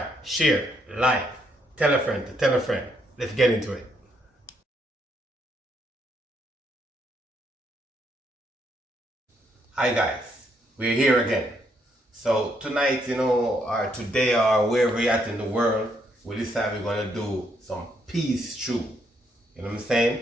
share, like, tell a friend to tell a friend. Let's get into it. Hi guys, we're here again. So tonight, or today, or wherever you're at in the world, we decided we're gonna do some peas stew. You know what I'm saying?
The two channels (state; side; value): normal; both; correlation 0.74